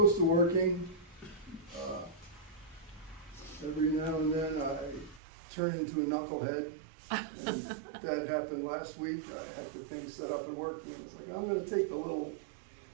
to working. Every now and then I turn into a knucklehead. And that happened last week. I had the thing set up at work and it's like, I'm going to take the little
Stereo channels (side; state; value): left; drops out; at 5.2 s